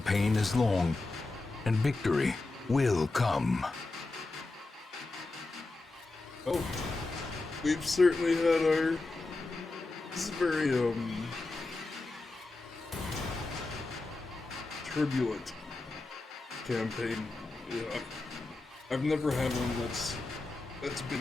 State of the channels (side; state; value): right; quieter; 3.3 dB